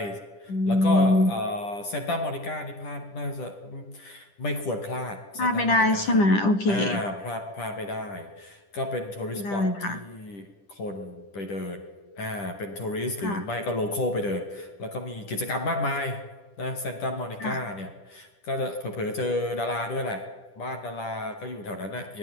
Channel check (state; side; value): late; right; 10 ms